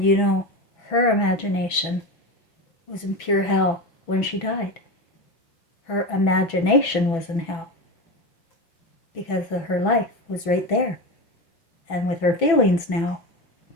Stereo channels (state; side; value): late; right; 6.0 ms